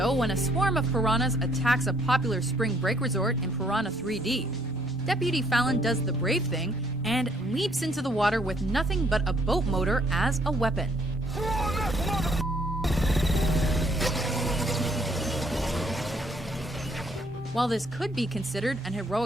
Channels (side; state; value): both; normal; correlation 0.66